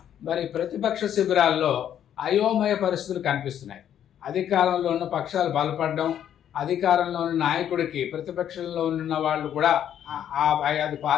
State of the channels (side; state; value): right; quieter; 10.0 dB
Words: మరి ప్రతిపక్ష శిబిరాల్లో అయోమయ పరిస్థితులు కనిపిస్తున్నాయి. అధికారంలో ఉన్న పక్షాలు బలపడడం, అధికారంలో ఉన్న నాయకుడికి ప్రతిపక్షంలో ఉన్న వాళ్ళు కూడా ఆ 5